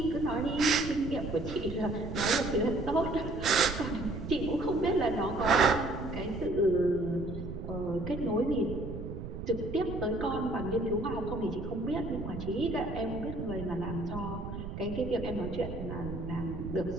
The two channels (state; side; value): noise; right; rumble, 8 dB below the sound